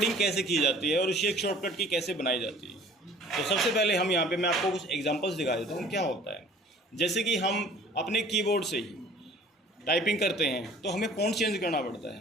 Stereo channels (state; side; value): normal; both; correlation 0.50